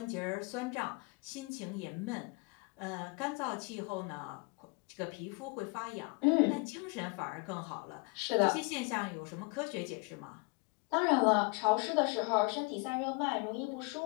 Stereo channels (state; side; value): quieter; right; 30.4 dB